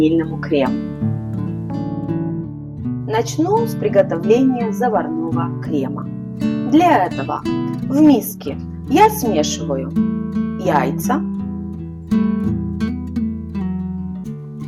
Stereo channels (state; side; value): identical; both; correlation 1.00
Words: крему. Начну с приготовления заварного крема. Для этого в миске я смешиваю яйца,